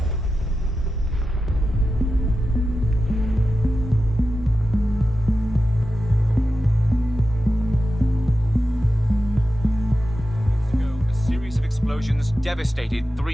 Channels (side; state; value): both; normal; correlation 0.92